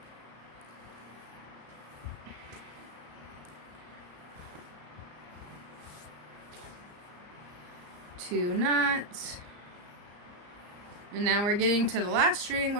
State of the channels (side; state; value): left; late; 34 ms